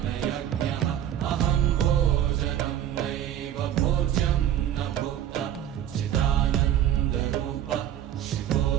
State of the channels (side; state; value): left; quieter; 10.8 dB